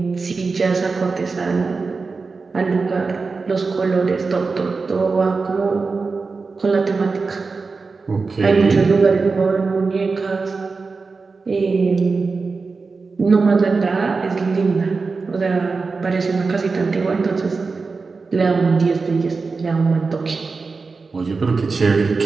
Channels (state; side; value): quieter; left; 4.3 dB